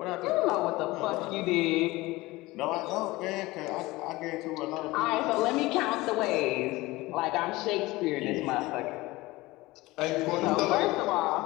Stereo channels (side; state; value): right; quieter; 20.3 dB